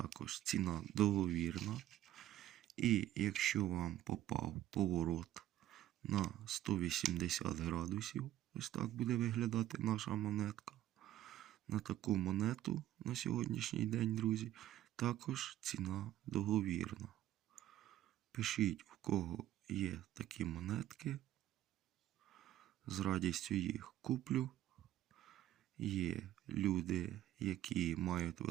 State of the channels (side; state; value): left; quieter; 13.3 dB